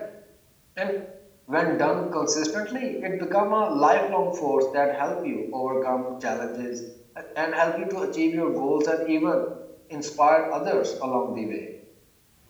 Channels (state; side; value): identical; both; correlation 1.00